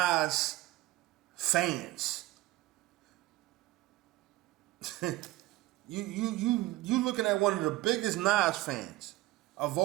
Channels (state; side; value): quieter; left; 17.9 dB